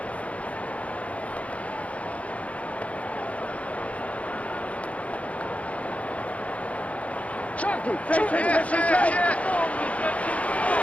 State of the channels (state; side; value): late; right; 0.065 ms